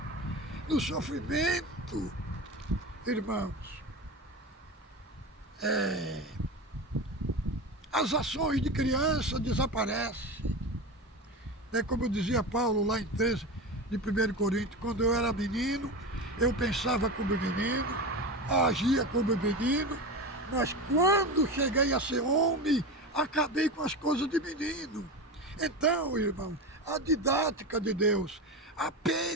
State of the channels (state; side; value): normal; both; correlation 0.24